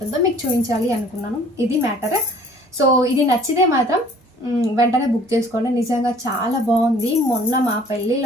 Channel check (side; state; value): both; normal; correlation 0.53